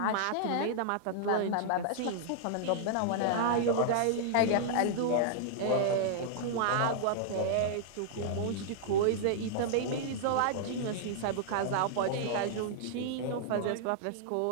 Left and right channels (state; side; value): different; both; correlation -0.01